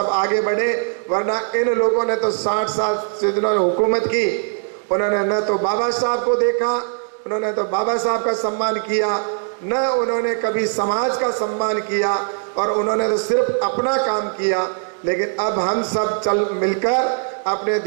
आगे बढ़े। वरना इन लोगों ने तो 60 साल से जिन्होंने हुकूमत की, उन्होंने न तो बाबा साहब को देखा, उन्होंने तो बाबा साहब का सम्मान किया, न उन्होंने कभी समाज का सम्मान किया, और उन्होंने तो सिर्फ अपना काम किया। लेकिन अब हम सब चल मिलकर अपने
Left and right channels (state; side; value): silent; left; 56 dB below the other